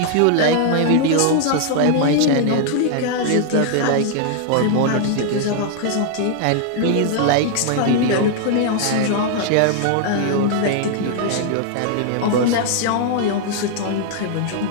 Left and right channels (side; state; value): both; different; correlation 0.00